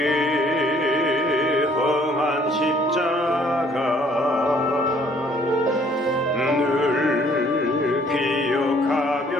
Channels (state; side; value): normal; both; correlation 0.61